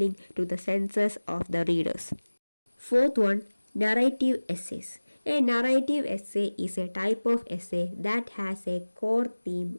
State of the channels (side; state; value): both; inverted; correlation -1.00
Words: to the senses of the readers. Fourth one, narrative essays. A narrative essay is a type of essay that has a core